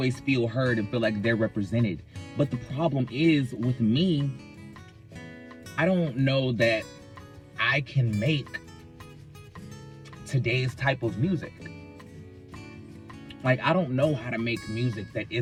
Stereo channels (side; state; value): both; identical; correlation 1.00